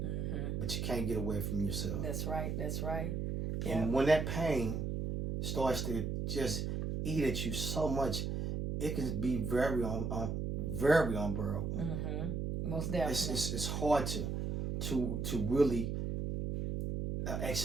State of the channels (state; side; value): noise; right; hum, 2 dB below the sound